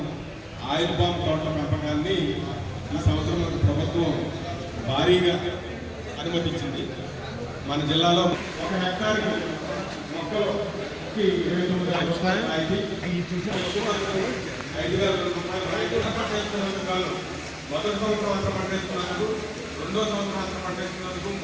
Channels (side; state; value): both; identical; correlation 1.00